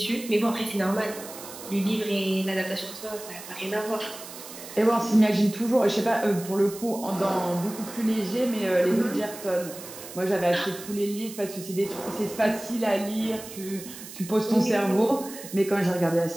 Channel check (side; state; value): right; noise; hiss, 14 dB below the sound